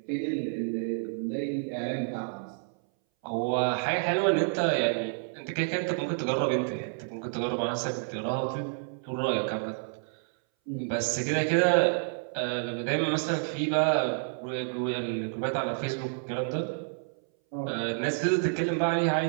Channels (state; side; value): silent; left; 58 dB below the other